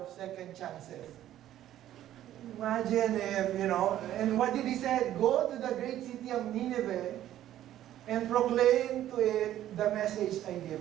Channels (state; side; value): quieter; left; 12.5 dB